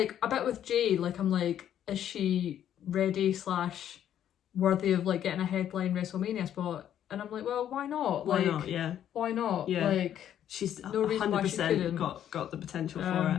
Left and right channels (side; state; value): right; quieter; 10.4 dB